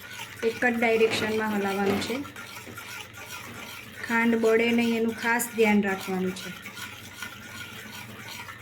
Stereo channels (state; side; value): identical; both; correlation 1.00